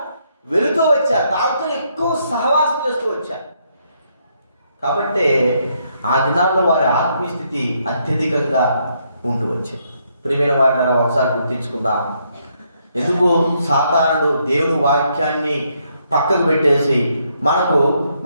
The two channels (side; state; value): both; inverted; correlation -0.74